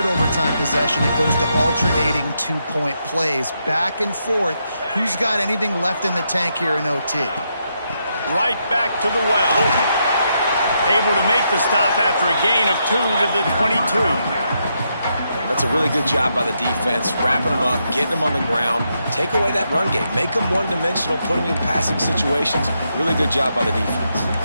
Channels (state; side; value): inverted; both; correlation -0.81